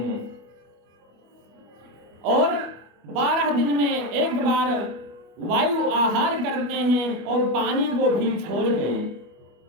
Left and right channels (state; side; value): late; left; 25 ms